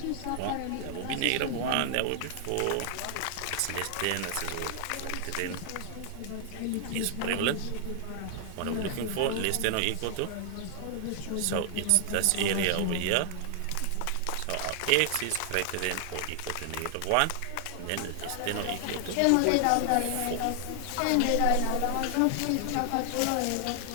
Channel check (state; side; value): different; both; correlation 0.00